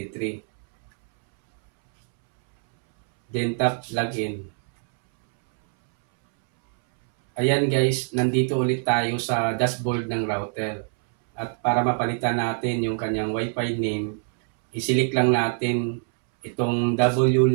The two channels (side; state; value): left; silent; 63 dB below the other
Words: Then tap login. Ayan guys, nandito ulit tayo sa dashboard ng router. At para mapalitan natin yung kanyang Wi-Fi name, isilik lang natin itong